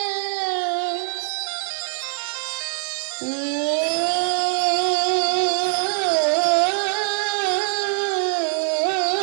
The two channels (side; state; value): left; silent; 61 dB below the other